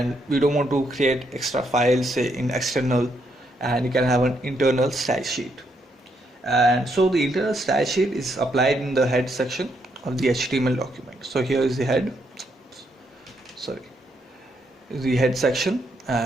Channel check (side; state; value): both; normal; correlation 0.76